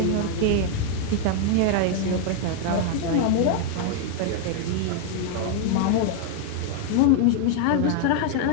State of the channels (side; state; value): both; different; correlation 0.00